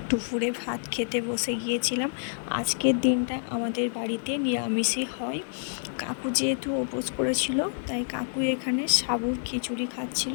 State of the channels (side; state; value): right; silent; digital silence